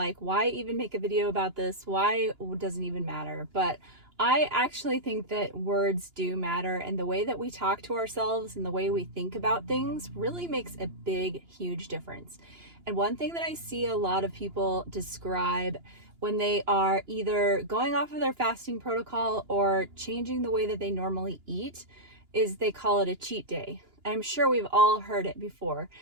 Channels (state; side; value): late; left; 2.9 ms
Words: why even make a video about this? Why doesn't even matter? But I actually think that words do matter, and the way that we talk to ourselves and the way we think about things really makes a big, huge difference. And one thing that I see a lot of people describe when they are either going off of their fasting protocol or changing the way that they normally eat is they call it a cheat day. I'm sure we've all heard it before.